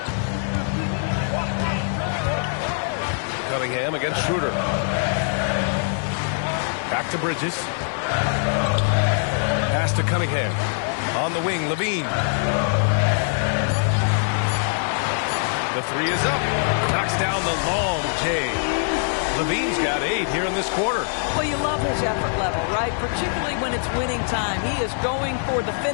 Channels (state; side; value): silent; right; digital silence